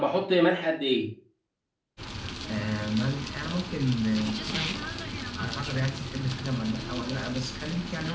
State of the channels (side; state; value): both; identical; correlation 1.00